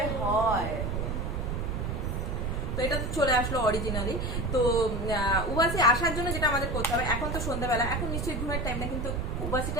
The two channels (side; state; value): right; noise; rumble, 2 dB below the sound